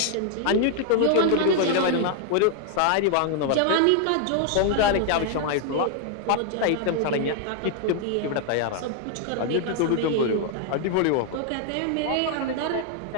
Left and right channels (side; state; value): both; different; correlation 0.00